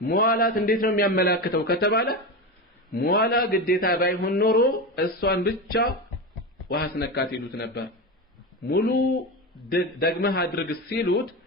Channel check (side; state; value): both; normal; correlation 0.20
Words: መዋላት እንዴት ነው የሚያመላክተው ከተባለ መዋላ ግዴታ ባይሆን ኖሮ እሷን ብቻ ውሃ አስነካት ይሉት ነበር ሙሉ ደግመህ አድርግ ሲሉት